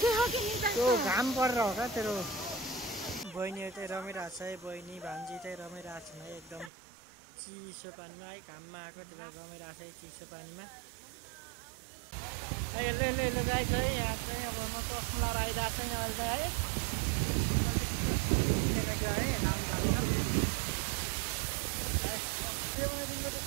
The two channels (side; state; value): left; drops out; at 6.7 s